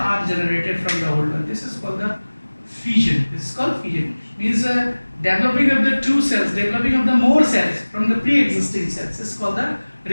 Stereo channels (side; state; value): both; inverted; correlation -1.00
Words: are generated from the old one. This is called the fission. This is called fission. Means developing of the two cells, developing of the more cells from the pre-existing cells. This is called the